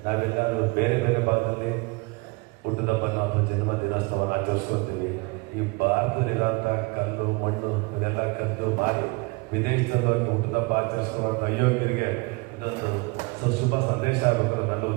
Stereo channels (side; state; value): left; quieter; 27.7 dB